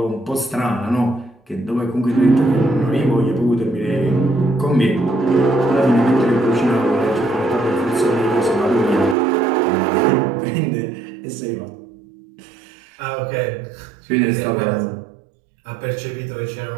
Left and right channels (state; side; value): drops out; left; at 9.2 s